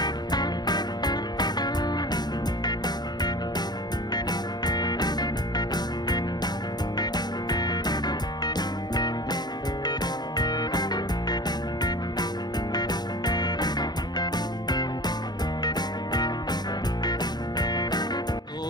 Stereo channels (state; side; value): late; right; 0.20 ms